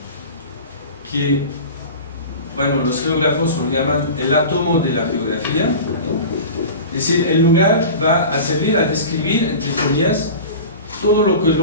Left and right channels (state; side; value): inverted; both; correlation -0.34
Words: que, bueno, los geógrafos lo llaman el átomo de la geografía. Es decir, el lugar va a servir a describir, entre comillas, todo lo que el